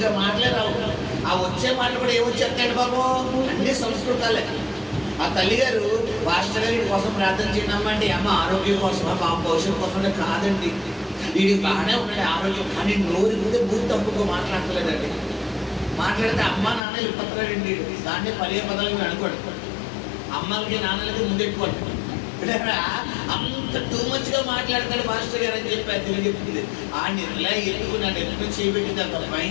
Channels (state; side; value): drops out; right; at 16.8 s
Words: మాట్లాడరావు. ఆ వచ్చే మాటలు కూడా ఏమొచ్చేస్తాడు బాబు? అన్ని సంస్కృతాలే. ఆ తల్లిగారు పాస్టర్ గారి కోసం ప్రార్థన చేయడమ్మా అంటే అమ్మ ఆరోగ్యం కోసమా, బాబు భవిష్యత్తు కోసం కాదండి, వీడికి బాగానే ఉన్నాడు ఆరోగ్యం, కానీ నోరు ఇస్తే బూత్ తప్పుకో మాట్లాడలేదండి. మాట్లాడితే అమ్మ నాన్న ఇప్పట్లాడండి. దాన్ని పదే పదాలు అనుకోండి. అమ్మలకి నాన్నలకి ముందెట్టుకోండి. అంత టూ మచ్ గా మాట్లాడతాడు మాస్టర్ గారు అని చెప్పి అది తెలియజెప్పింది. ఆ నిర్లా ఎత్తుకు నన్ను ఎత్తుకు చేయబెట్టింది. అంత